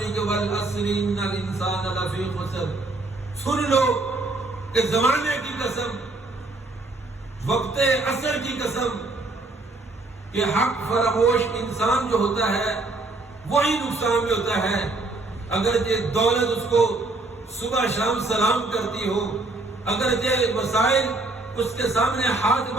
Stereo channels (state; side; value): quieter; left; 3.1 dB